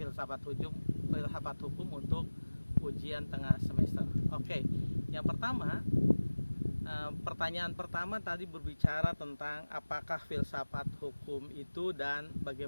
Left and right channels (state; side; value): inverted; both; correlation -1.00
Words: hukum untuk ujian tengah semester. Oke, yang pertama, pertanyaan pertama tadi berbicara tentang apakah filsafat hukum itu dan